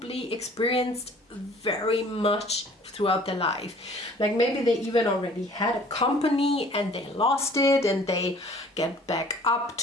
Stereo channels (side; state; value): both; normal; correlation 0.52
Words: experienced very much throughout their life. Like maybe they even already had a company and they lost it and they get back up